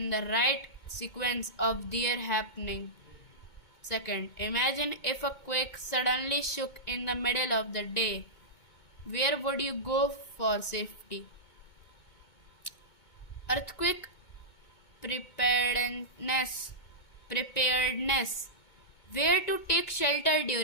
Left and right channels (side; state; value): right; late; 2.2 ms